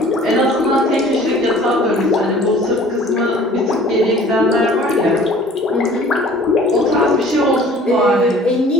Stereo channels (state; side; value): normal; both; correlation 0.50